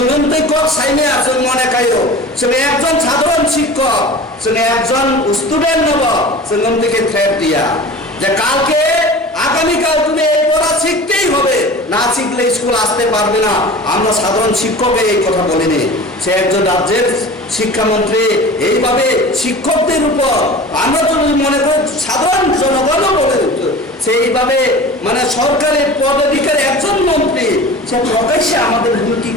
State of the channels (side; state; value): both; normal; correlation 0.38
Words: कक साइमे जों मने खायो जों एकजन साधारण शिक्षक जों एकजन स्टुडेंट नब जों नोंदिके थ्रेट दिया যে কালকে আগামী কাল তুমি এই পড়া শিখতেই হবে না শিখলে স্কুল আসতে পারবে না আমরা সাধারণ শিক্ষককে এই কথা বলিনি সে একজন রাজ্যের শিক্ষামন্ত্রী এইভাবে শিক্ষকদের উপর আমরা যদি মনে করি সাধারণ জনগণও বলে সেইভাবে মানে সরকারি পদাধিকারী একজন মন্ত্রী সে প্রকাশ্যে আমাদের হুমকি